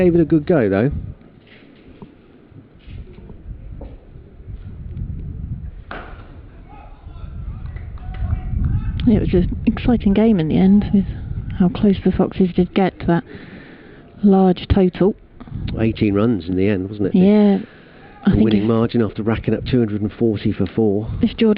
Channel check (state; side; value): identical; both; correlation 1.00